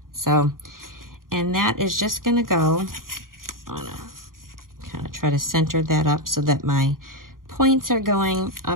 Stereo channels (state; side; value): late; left; 0.91 ms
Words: So, and that is just going to go on a, kind of try to center that up so that my points are going